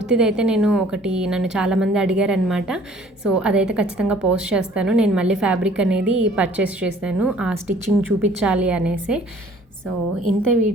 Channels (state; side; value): normal; both; correlation 0.55